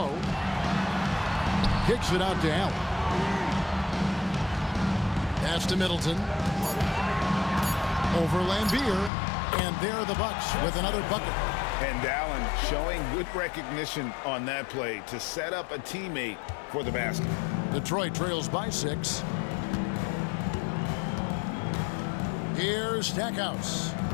Kicks it out to Allen. Pass to Middleton. Over Lambier. And there the Bucks with another bucket. And Allen showing good recognition on that play to set up a teammate for the basket. Detroit trails by 6. Here's Stackhouse.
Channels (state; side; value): drops out; right; at 9.1 s